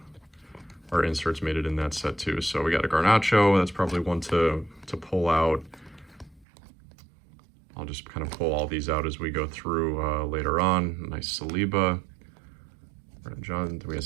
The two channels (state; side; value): drops out; left; at 6.5 s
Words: inserts made it in that set too. So we got a Garnacho, that's probably one to pull out. I'll just kind of pull all these out as we go through later on. Nice Saliba. John, we have